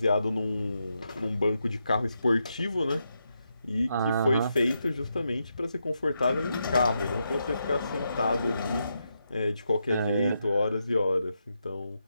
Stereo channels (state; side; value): inverted; both; correlation -0.84